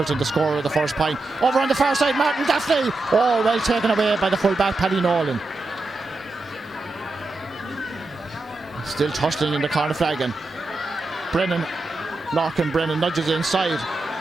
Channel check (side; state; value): left; quieter; 3.1 dB